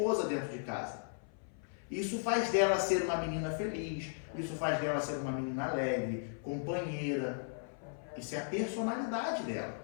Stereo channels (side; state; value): right; silent; 54 dB below the other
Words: dentro de casa. Isso faz dela ser uma menina feliz, isso faz dela ser uma menina alegre, companheira. Isso é a personalidade dela,